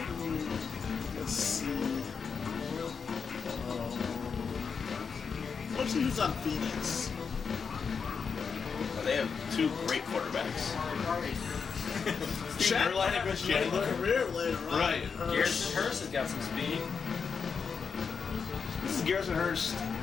Let's see. Let's see who's on Phoenix. They have two great quarterbacks. Steve Erline and Chris Chandler. Career later on. Right. Garrison Hurst has got some speed. This is Garrison Hurst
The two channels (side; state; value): right; quieter; 5.9 dB